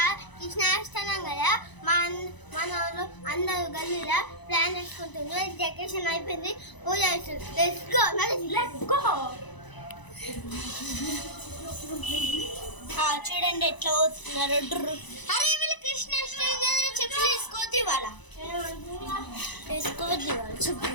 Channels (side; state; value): right; late; 1.0 ms